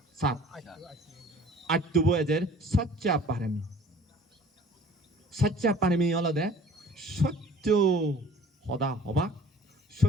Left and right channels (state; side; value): normal; both; correlation 0.49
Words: 7 আট্টুবো এদের সচ্চা পারেমি হলদে সত্য সদা হবা